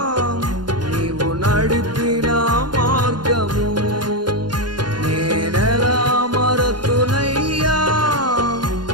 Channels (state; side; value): late; left; 0.71 ms